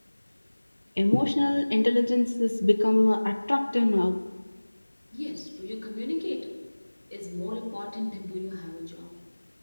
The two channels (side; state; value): both; inverted; correlation -1.00